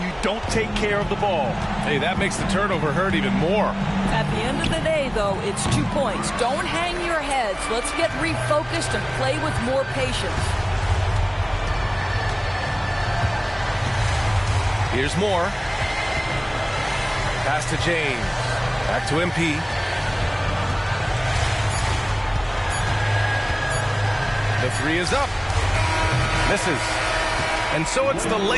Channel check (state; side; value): identical; both; correlation 1.00